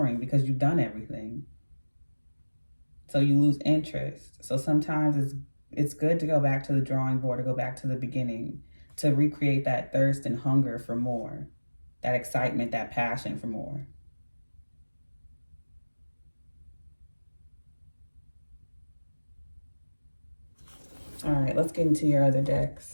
because you've done everything. So you lose interest. So sometimes it's good to go back to the drawing board, to go back to the beginning, to recreate that thirst and hunger for more, that excitement, that passion for more. All right, let's get into your other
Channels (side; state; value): both; inverted; correlation -1.00